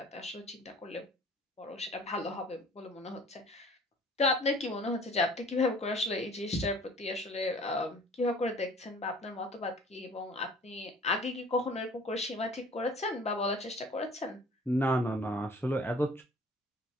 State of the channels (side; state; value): both; normal; correlation 0.49